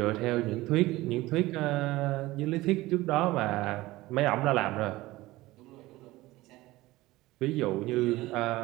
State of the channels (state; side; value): quieter; left; 18.5 dB